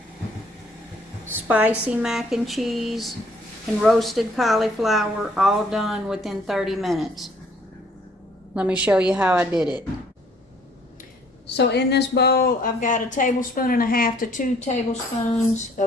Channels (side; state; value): both; normal; correlation 0.61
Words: spicy mac and cheese, and roasted cauliflower, all done within 30 minutes. Let me show you how I did it. So in this bowl, I've got 1.5 tablespoons to 2 tablespoons